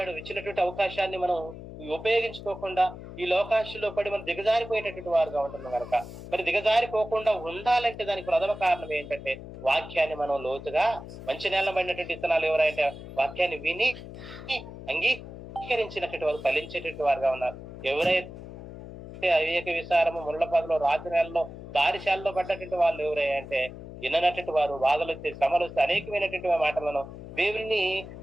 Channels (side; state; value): left; noise; hum, 13 dB below the sound